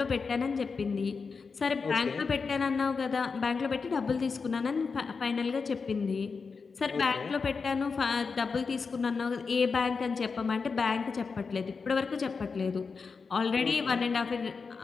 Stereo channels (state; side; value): quieter; right; 5.0 dB